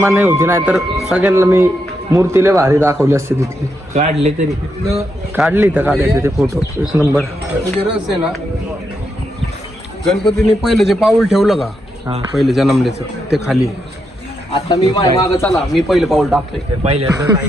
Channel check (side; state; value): both; normal; correlation 0.82